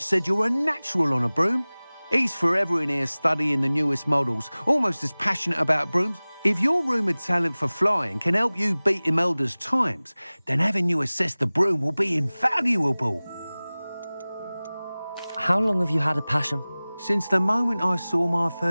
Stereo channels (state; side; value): inverted; both; correlation -0.99